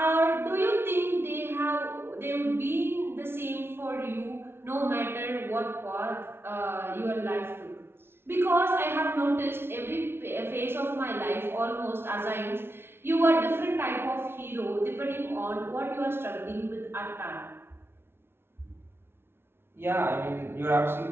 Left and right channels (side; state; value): left; late; 0.11 ms